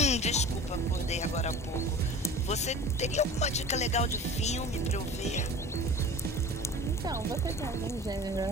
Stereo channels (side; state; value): both; normal; correlation 0.39